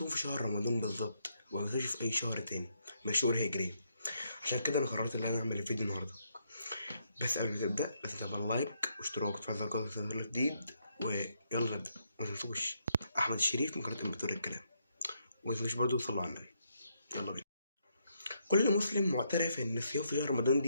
في شهر رمضان بالظبط وما بنصومش في اي شهر تاني من الشهور الهجرية؟ عشان كده انا قررت ان انا اعمل الفيديو النهارده. بس قبل ما تبدا لازم تعمل لايك واشتراك وتفعل زر الجرس عشان يوصلك جديد. ويلا نبدا. ما تنسوش احمد الشريف من قناه امبراطور الكلام. وما تنسوش برضه تصلوا على النبي. يلا بينا. كل مسلم معترف ان الصيام في شهر رمضان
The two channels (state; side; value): inverted; both; correlation -0.76